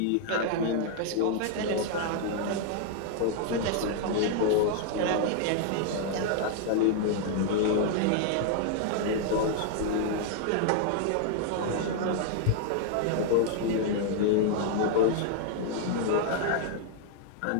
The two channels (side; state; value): both; different; correlation 0.00